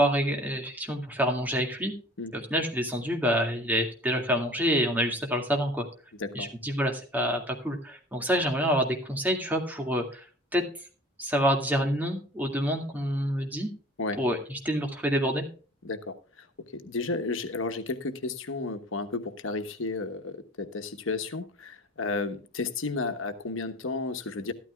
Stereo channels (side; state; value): both; normal; correlation 0.44